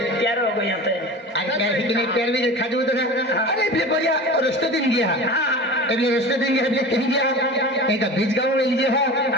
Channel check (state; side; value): normal; both; correlation 0.34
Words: प्यार हो गया ते अरे प्यार भी नहीं प्यार भी खाजो तो अरे भी बोलिया और रास्ते दिन गया अरे रास्ते दिन गया अभी कहीं गया कहीं का बीच गांव में लीजिए